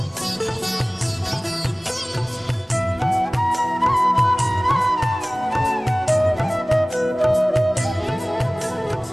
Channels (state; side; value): normal; both; correlation 0.98